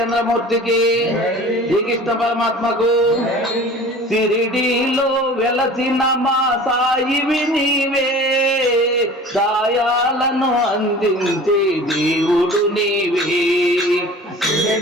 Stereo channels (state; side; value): normal; both; correlation 0.42